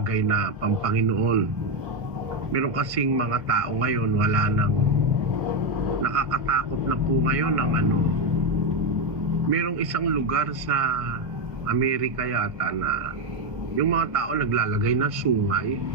na pampanginoon. Meron kasing mga tao ngayon, wala nang nakakatakot na po ngayon ng merong isang lugar sa Amerika yata na yung mga tao naglalagay ng sungay,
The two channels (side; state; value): left; late; 1.1 ms